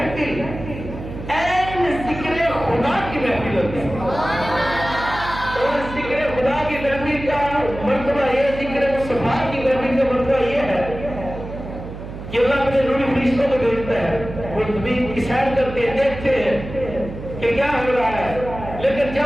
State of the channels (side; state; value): right; noise; hum, 10 dB below the sound